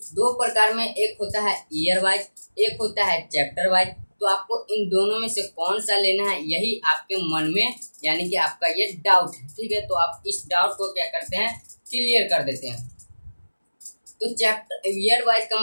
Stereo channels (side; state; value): both; inverted; correlation -1.00